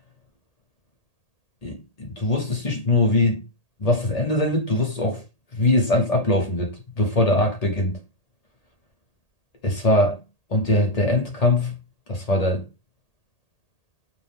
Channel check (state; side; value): late; right; 1.8 ms